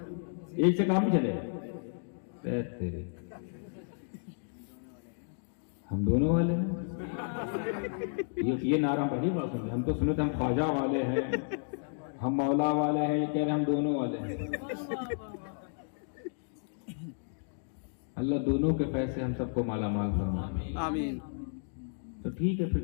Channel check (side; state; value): right; silent; digital silence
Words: ایک سے کام نہیں چلے گا۔ تیرے ہم دونوں والے ہیں، یہ نعرہ بڑی بات سن، ہم تو سنے تھے ہم خواجہ والے ہیں، ہم مولا والے ہیں، یہ کہہ رہے ہم دونوں والے ہیں۔ اللہ دونوں کے پیسے ہم سب کو مالا مال فرمائے، آمین۔ تو ٹھیک ہے،